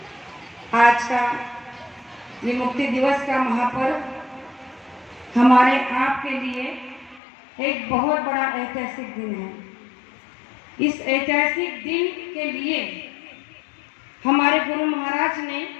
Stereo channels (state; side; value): drops out; right; at 7.2 s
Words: आज का ये मुक्ति दिवस का महापर्व हमारे आपके लिए एक बहुत बड़ा ऐतिहासिक दिन है। इस ऐतिहासिक दिन के लिए हमारे गुरु महाराज ने